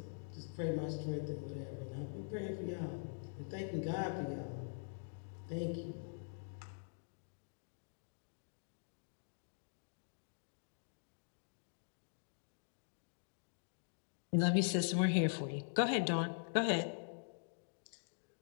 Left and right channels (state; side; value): silent; right; digital silence